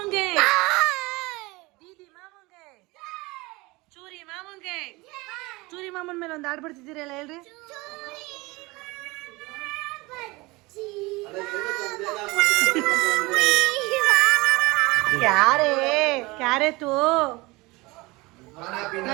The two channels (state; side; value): quieter; left; 23.0 dB